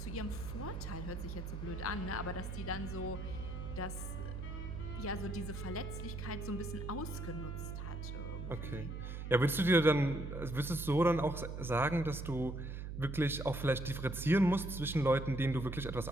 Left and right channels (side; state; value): right; noise; hum, 6 dB below the sound